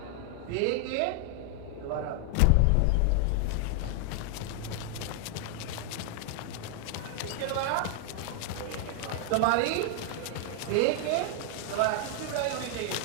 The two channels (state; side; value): different; both; correlation 0.00